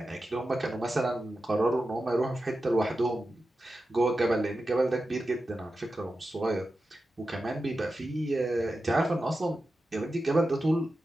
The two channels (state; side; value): normal; both; correlation 0.92